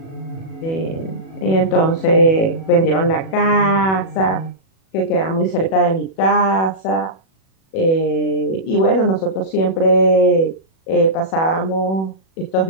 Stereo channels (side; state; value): right; late; 37 ms